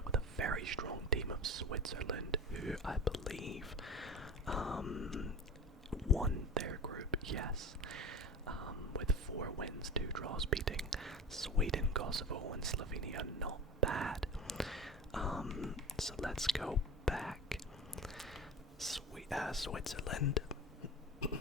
with a very strong team of Switzerland, who I believe won their group, yes, with 4 wins, 2 draws, beating Sweden, Kosovo, and Slovenia. Not bad. So let's go back. Switzerland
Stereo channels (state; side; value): normal; both; correlation 0.32